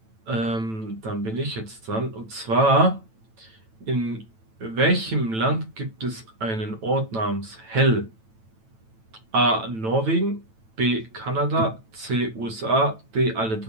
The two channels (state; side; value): late; left; 9.0 ms